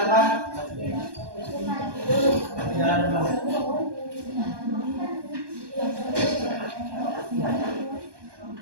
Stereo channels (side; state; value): left; late; 1.2 ms